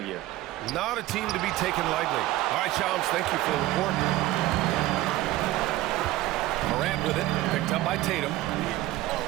Not a team to be taken lightly. All right, Shams, thank you for the report. Morant with it, picked up by Tatum.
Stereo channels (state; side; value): quieter; left; 16.4 dB